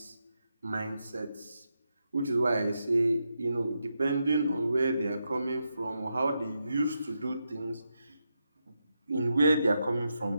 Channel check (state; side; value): inverted; both; correlation -0.85